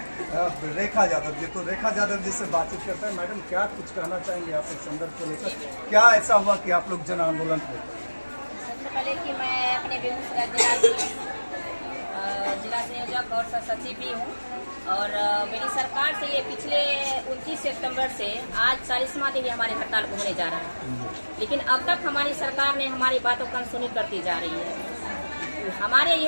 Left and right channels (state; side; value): inverted; both; correlation -1.00